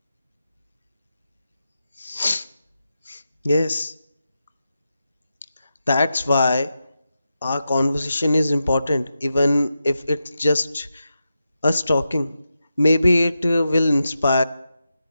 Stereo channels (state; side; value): inverted; both; correlation -0.89